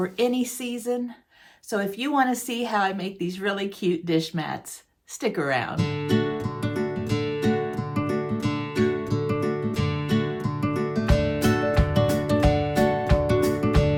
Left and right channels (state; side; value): identical; both; correlation 1.00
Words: any season. So if you want to see how I make these really cute dish mats, stick around.